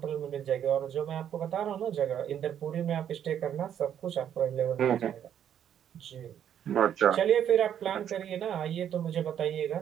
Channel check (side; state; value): left; quieter; 9.6 dB